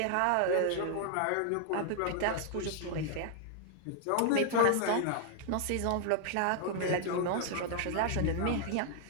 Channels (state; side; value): different; both; correlation 0.00